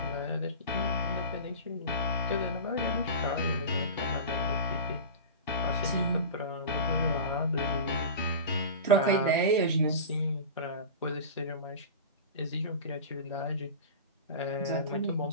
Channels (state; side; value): inverted; both; correlation -0.30